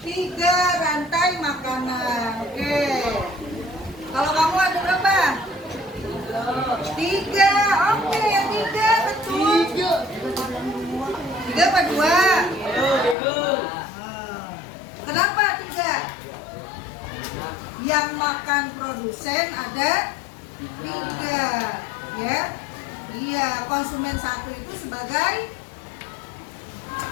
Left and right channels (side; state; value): right; drops out; at 13.2 s